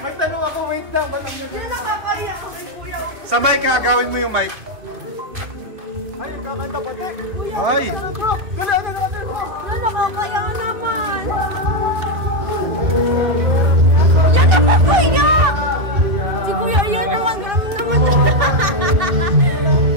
tanong ako, wait lang, ba't ang Hindi ganda-ganda ko? nakakaya ako kay kuya. Sa mic ha, gawin mo yung mic. Ay, kakanta pa, Tek. Kuya, Ay. ano bro? Gala, ano bro? Wala nakakaya naman. Yan naman kuya. Si kuya yan naman, grabe naman.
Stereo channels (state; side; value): late; left; 2.3 ms